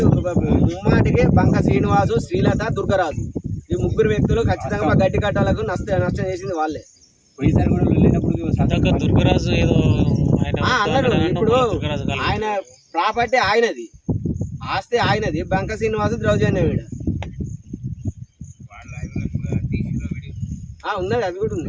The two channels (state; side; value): identical; both; correlation 1.00